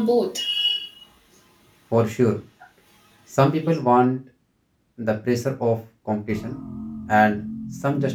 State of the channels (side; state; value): both; identical; correlation 1.00